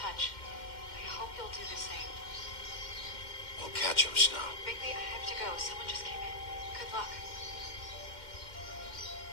I hope you'll do the same. We'll catch him, Snow. Bigby, I have to go. Someone just came in. Good luck.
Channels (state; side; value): late; right; 2.1 ms